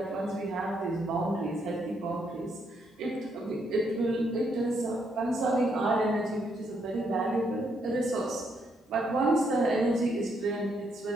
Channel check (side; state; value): both; normal; correlation 0.75